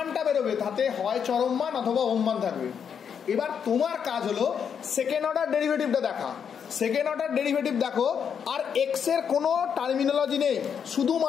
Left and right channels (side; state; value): right; quieter; 7.4 dB